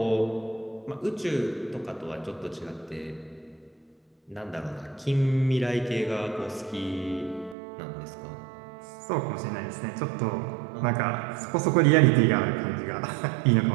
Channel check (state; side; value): drops out; left; at 7.6 s